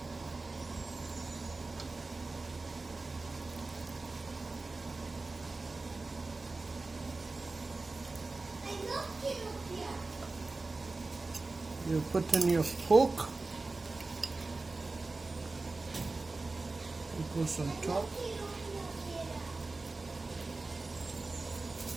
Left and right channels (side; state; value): left; quieter; 3.5 dB